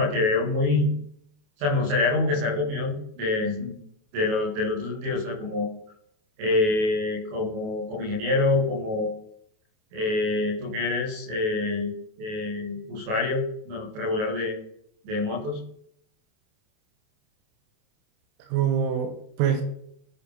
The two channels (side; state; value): left; late; 28 ms